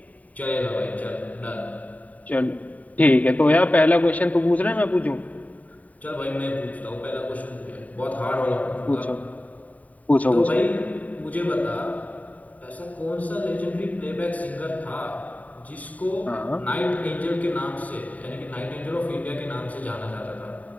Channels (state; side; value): late; right; 0.071 ms